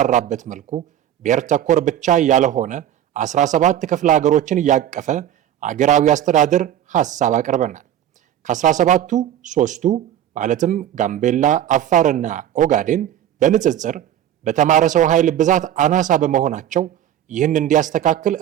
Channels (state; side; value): quieter; left; 11.2 dB